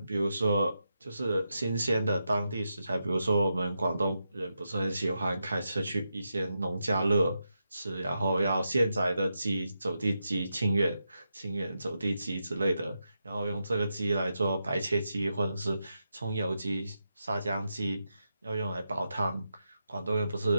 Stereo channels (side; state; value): both; inverted; correlation -0.86